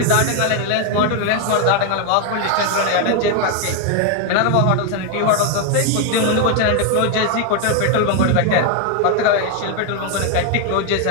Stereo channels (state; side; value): different; both; correlation 0.01